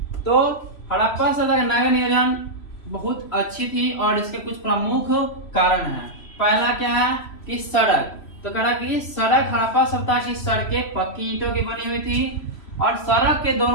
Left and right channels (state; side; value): late; right; 3.0 ms